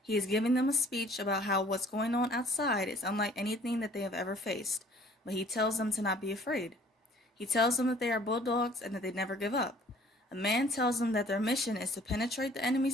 He is giving them a speech about how what's going on outside is unlike anything that they have ever faced, but he tells them to not be afraid. He tells them that they are Bulldogs and that they never give up. A man tells them that their mission is to penetrate the enemy's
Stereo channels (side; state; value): both; normal; correlation 0.54